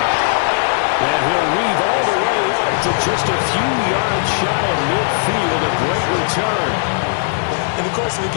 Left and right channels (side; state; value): right; silent; 68 dB below the other